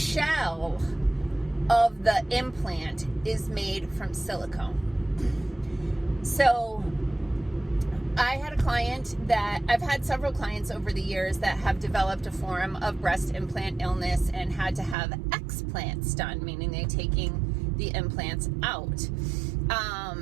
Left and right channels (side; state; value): left; drops out; at 15.0 s